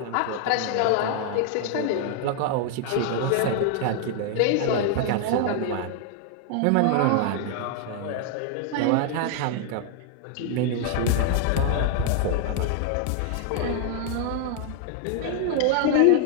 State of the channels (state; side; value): different; both; correlation 0.00